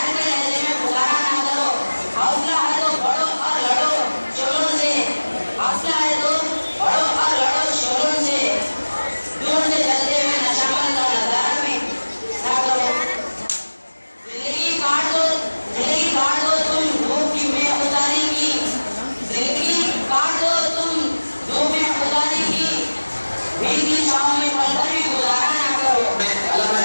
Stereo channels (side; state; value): both; inverted; correlation -1.00